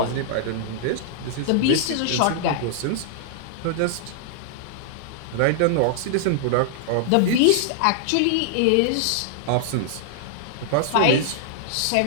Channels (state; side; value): different; both; correlation -0.01